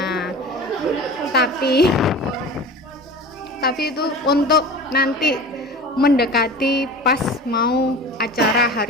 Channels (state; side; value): normal; both; correlation 0.36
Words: Tapi itu untuk nanti mendekati pas mau acara